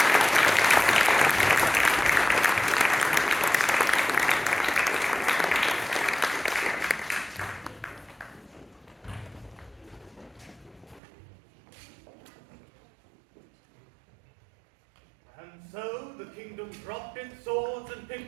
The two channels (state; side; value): drops out; left; at 11.0 s